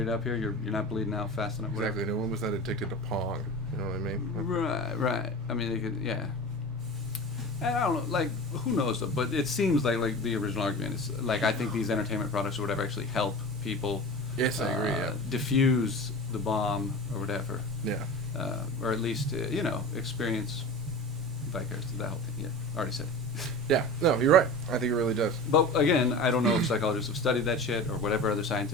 it up here? You're not bleeding out fast enough. Whatever. Exactly. No one was that addicted to Pong. You know what I mean? Right. I mean, they could, yeah. And I don't know, like, who knows, though, but it seems like the original argument is, like, I think these entertainment products or whatever actually help people yes, I agree, yeah. diffuse the bomb or whatever. Yeah. Or at least, experience vicariously that whole thing. Yeah, already said it. Yeah, no, you're right. I think it really does. But again, I don't know if psychologists have studied that shit or whatever other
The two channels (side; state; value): both; normal; correlation 0.33